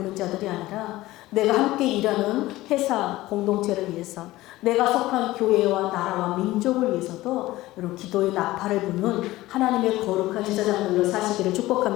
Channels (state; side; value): quieter; right; 17.4 dB